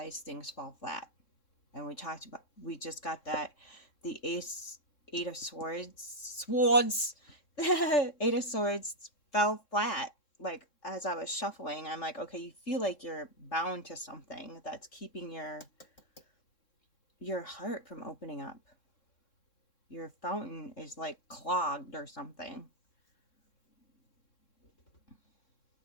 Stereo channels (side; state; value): right; late; 3.6 ms